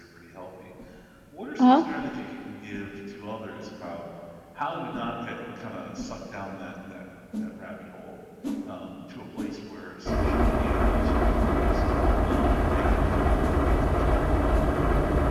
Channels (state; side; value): identical; both; correlation 1.00